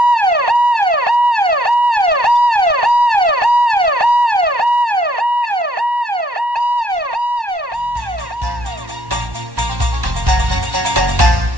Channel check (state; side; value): late; left; 1.1 ms